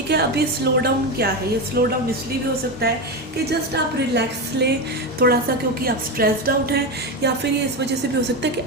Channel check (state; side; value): normal; both; correlation 0.16